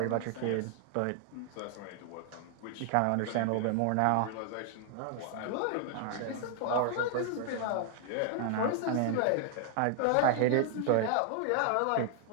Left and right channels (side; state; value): both; different; correlation 0.00